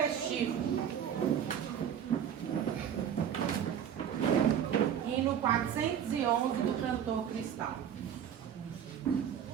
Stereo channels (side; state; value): left; quieter; 8.9 dB